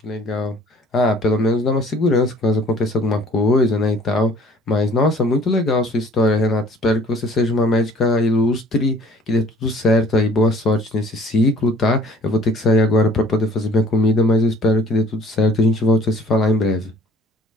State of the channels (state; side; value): normal; both; correlation 0.52